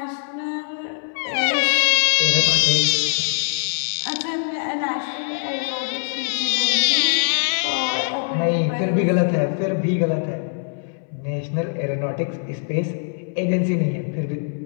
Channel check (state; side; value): silent; right; 64 dB below the other